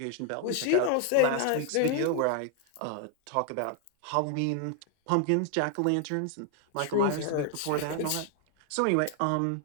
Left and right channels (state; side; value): different; both; correlation 0.00